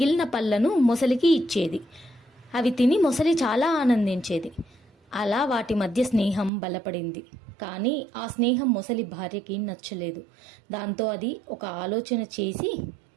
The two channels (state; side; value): drops out; left; at 6.5 s